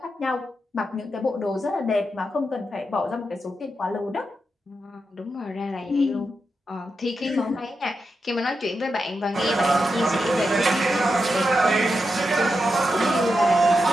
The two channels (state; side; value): normal; both; correlation 0.87